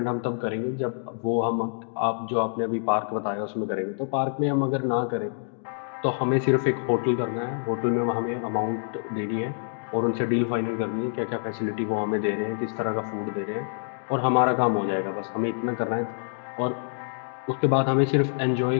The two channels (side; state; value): right; silent; digital silence